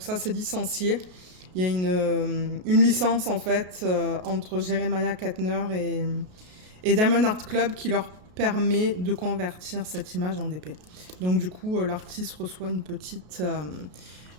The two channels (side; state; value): left; late; 33 ms